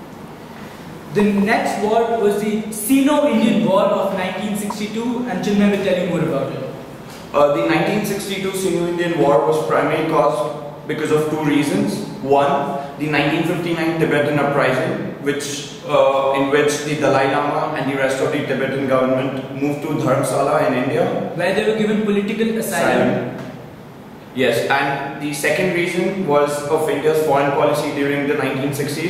The next war was the Sino-Indian War of 1962, and Chinmay will tell you more about it. The 1962 Sino-Indian War was primarily caused because of two reasons. One, the 1959 Tibetan uprising, in which the Dalai Lama and the rest of the Tibetan government moved to Dharamsala in India, where they were given political asylum. Yes, and the second reason was of India's foreign policy during the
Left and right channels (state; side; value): identical; both; correlation 1.00